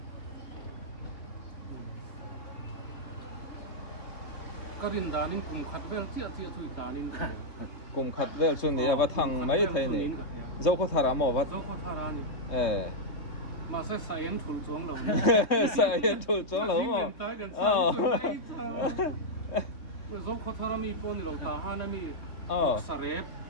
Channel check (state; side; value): late; right; 3.2 ms